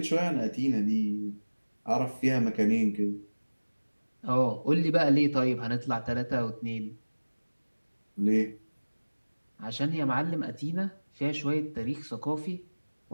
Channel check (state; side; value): inverted; both; correlation -1.00